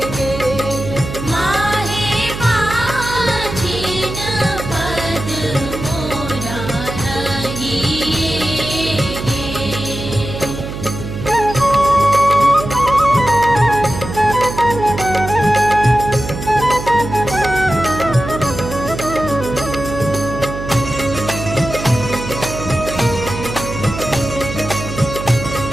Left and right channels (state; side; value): noise; right; hum, 7 dB below the sound